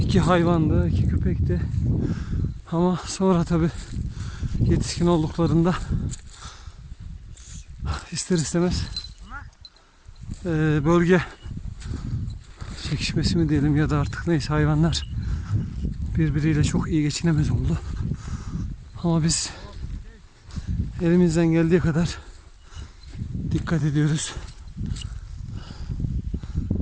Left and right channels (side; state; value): both; identical; correlation 1.00